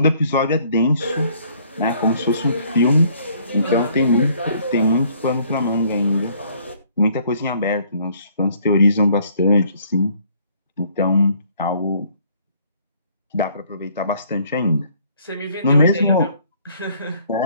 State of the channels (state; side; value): inverted; both; correlation -0.62